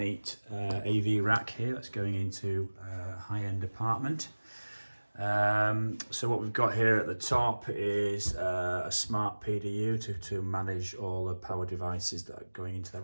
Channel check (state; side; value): inverted; both; correlation -1.00